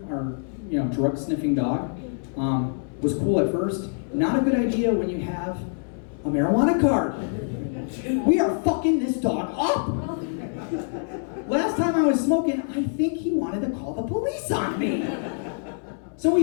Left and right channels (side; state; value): right; silent; 62 dB below the other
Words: our drug sniffing dog. Was cool at first. Not a good idea when you have a marijuana card. We are fucking this dog up. Last time I was smoking, I think he wanted to call the police on me. So